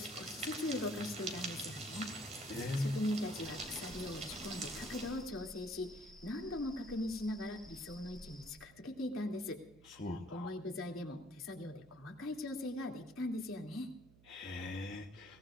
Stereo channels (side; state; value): right; noise; hum, 23 dB below the sound